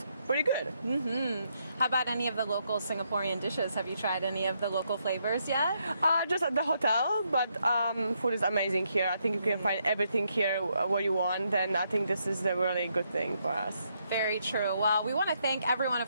pretty good. How about any of the local Singaporean dishes? Have you tried any of the local flavors yet? Just at the hotel, but food is amazing here. I think you can find everything here what you want, and I think this is a really good thing for us. Very true. Well, we want to thank everyone,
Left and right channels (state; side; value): inverted; both; correlation -0.77